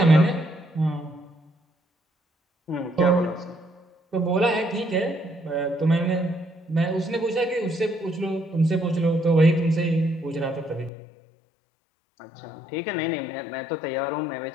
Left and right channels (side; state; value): right; drops out; at 10.9 s